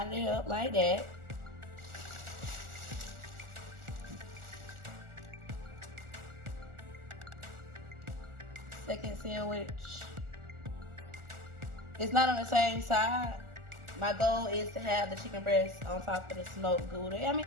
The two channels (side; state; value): left; late; 1.4 ms